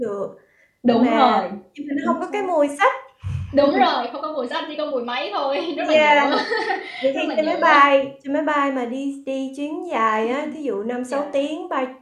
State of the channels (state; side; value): identical; both; correlation 1.00